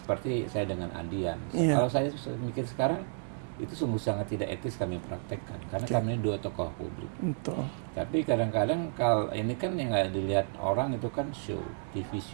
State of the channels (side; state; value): left; silent; digital silence